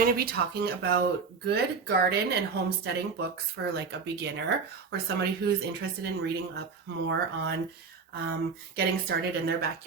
to be talking about good garden and homesteading books for like a beginner or somebody who's interested in reading up more on getting started in their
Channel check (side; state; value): left; quieter; 5.2 dB